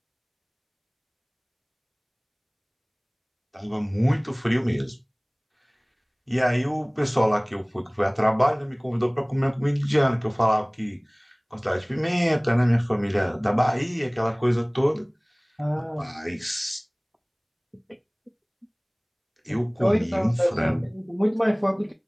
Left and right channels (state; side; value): identical; both; correlation 1.00